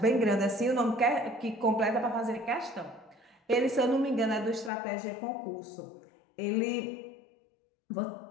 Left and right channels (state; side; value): drops out; right; at 4.7 s